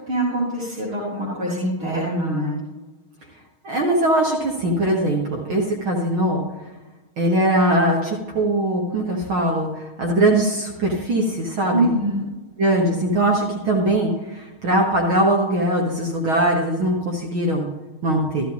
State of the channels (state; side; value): late; left; 6.4 ms